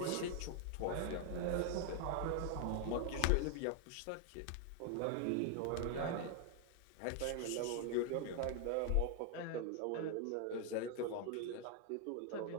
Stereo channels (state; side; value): different; both; correlation 0.00